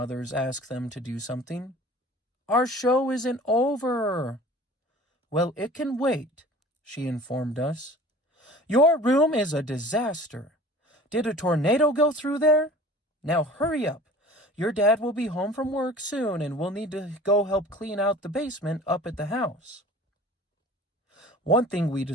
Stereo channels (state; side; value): normal; both; correlation 0.44